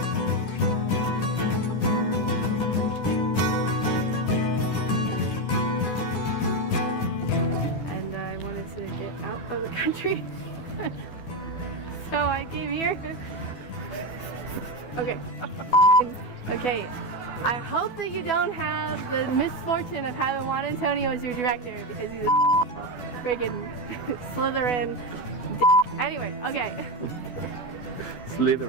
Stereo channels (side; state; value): right; late; 12 ms